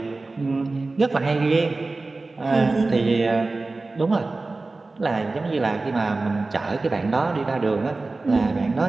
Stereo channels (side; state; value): left; quieter; 3.4 dB